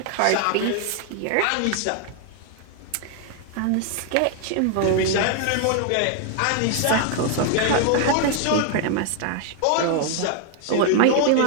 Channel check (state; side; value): different; both; correlation 0.00